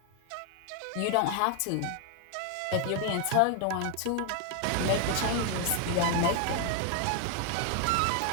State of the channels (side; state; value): both; different; correlation 0.01